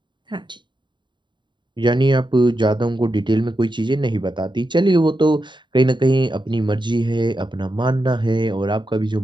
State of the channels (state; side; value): late; left; 0.23 ms